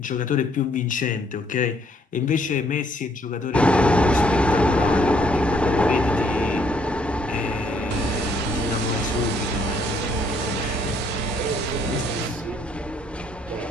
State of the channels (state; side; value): normal; both; correlation 0.67